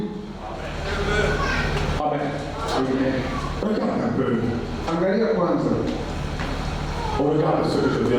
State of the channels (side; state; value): both; identical; correlation 1.00